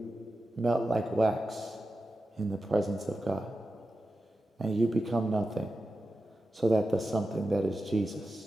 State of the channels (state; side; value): normal; both; correlation 0.92